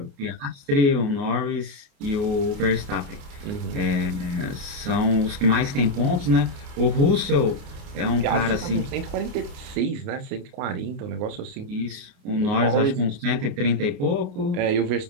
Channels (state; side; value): late; left; 28 ms